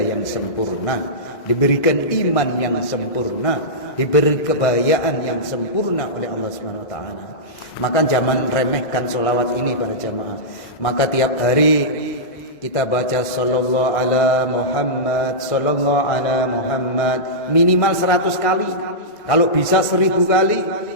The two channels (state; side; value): late; right; 2.0 ms